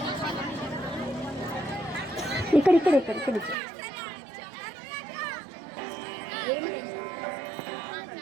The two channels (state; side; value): drops out; left; at 3.6 s